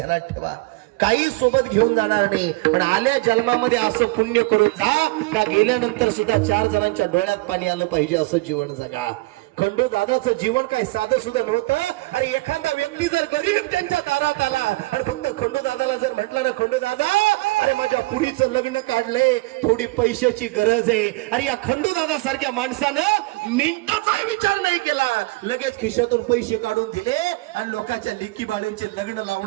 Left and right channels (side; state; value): left; quieter; 22.7 dB